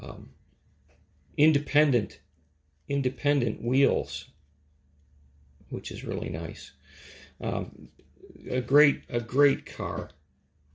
Independent wheels, which is really nice. A great car.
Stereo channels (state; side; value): identical; both; correlation 1.00